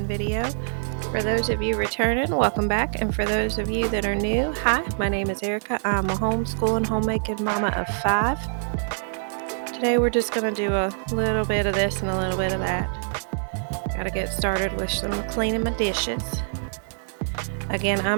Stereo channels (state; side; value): silent; left; digital silence